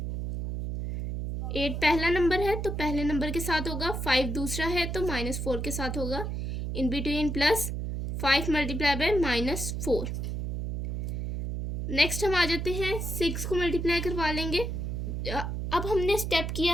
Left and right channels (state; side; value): noise; right; hum, 3 dB below the sound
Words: 8 पहला नंबर है तो पहले नंबर के साथ होगा, 5 दूसरा है तो -4 के साथ होगा, इन बिटवीन प्लस, 5 × -4। नेक्स्ट हम आ जाते हैं 6 को मल्टीप्लाई करवा लेंगे। अब हमने स्टेप किया